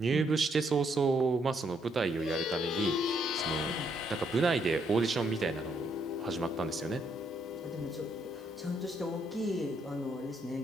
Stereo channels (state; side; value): normal; both; correlation 0.73